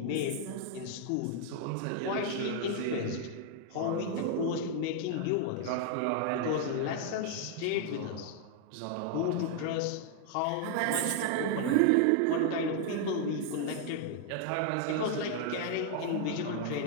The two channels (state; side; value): different; both; correlation 0.00